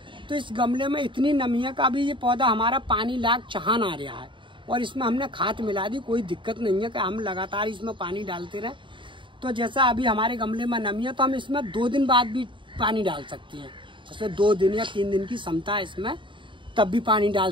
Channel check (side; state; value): left; late; 0.24 ms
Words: तो इस गमले में इतनी नमी है कि अभी ये पौधा हमारा पानी लाग चहान आ रहा है और इसमें हमने खाद मिला दी। कोई दिक्कत नहीं है कि हम लगातार इसमें पानी डालते रहे। तो जैसा अभी हमारे गमले में नमी है तो हम इसमें 2 दिन बाद भी पानी डाल सकते हैं। जैसे 2 दिन या 3 दिन की क्षमता है इसमें, तब भी पानी